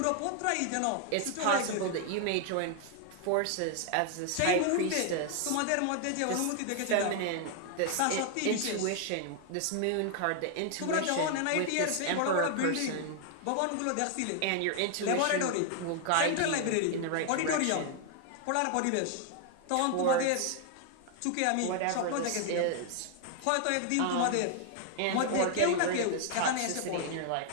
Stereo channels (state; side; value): different; both; correlation 0.00